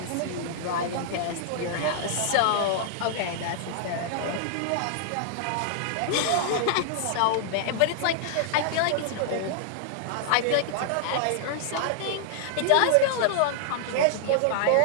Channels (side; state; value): both; different; correlation -0.01